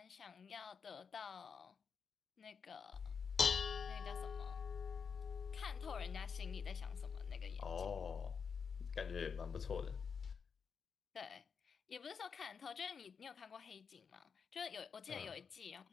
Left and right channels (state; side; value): quieter; right; 6.1 dB